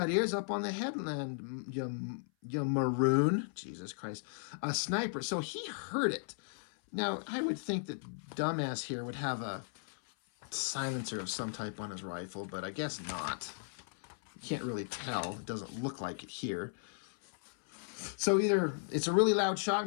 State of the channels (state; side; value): silent; right; 54 dB below the other